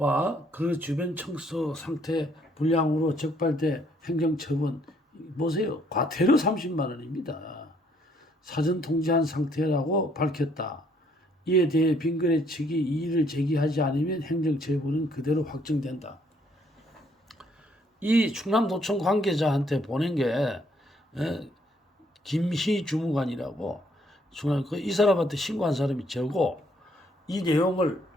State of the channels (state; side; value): normal; both; correlation 0.67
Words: 그 주변 청소 상태 불량으로 적발돼 행정처분, 보세요. 과태료 30만 원입니다. 사전 통지한 상태라고 밝혔다. 이에 대해 빙그레 측이 이의를 제기하지 않으면 행정처분은 그대로 확정된다. 이 충남도청 관계자한테 보낸 게 김희 주무관이라고 이 사람한테 신고한 사람이 저고 이 내용을